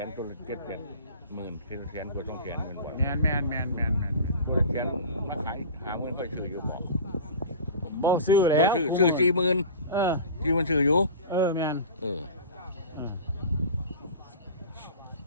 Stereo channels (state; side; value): inverted; both; correlation -0.37